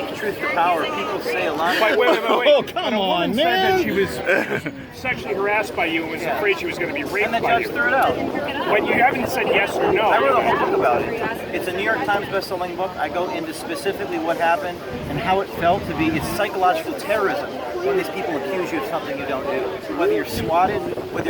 truth to power, people say a lot. Wait. Oh, come When a woman on, said man. that she was sexually harassed by you and was afraid she was going to be raped And the by judge you. threw it out. But you haven't said yes or no. I wrote a whole book about it. It's a New York Times best-selling book. I go into specifically what happened and how it felt to be. It's psychological terrorism when these people accuse you of something you don't do. Whether you're swatted, whether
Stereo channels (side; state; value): both; identical; correlation 1.00